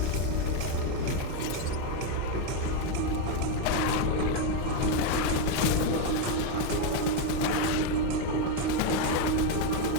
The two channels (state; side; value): different; both; correlation 0.02